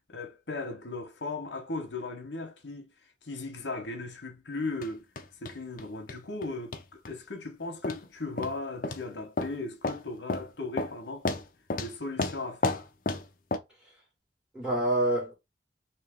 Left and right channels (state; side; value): normal; both; correlation 0.03